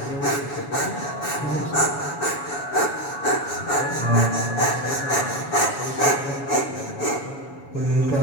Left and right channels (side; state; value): right; late; 7.1 ms